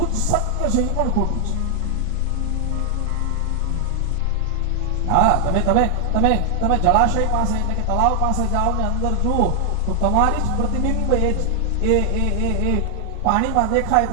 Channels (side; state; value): both; different; correlation 0.00